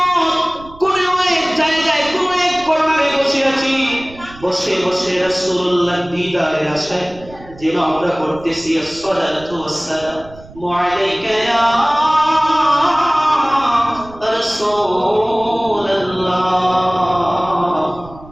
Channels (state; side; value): noise; right; rumble, 20 dB below the sound